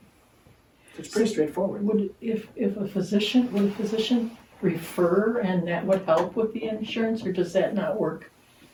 It's pretty straightforward. Would a physician refer and that would help with the insurance, or does that not work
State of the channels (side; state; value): both; identical; correlation 1.00